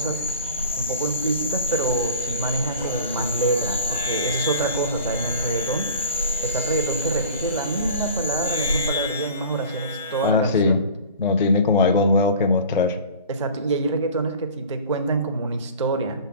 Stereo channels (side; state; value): both; inverted; correlation -0.42